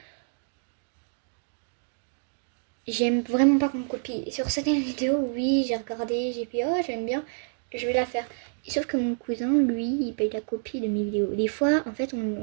j'aime vraiment pas qu'on me copie. Et sur certaines vidéos, oui, j'ai regardé, j'ai fait, oh, j'aime bien, je vais la faire. Et sauf que mon cousin, lui, il paye la copie de mes vidéos. Des fois, en fait,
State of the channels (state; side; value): silent; left; digital silence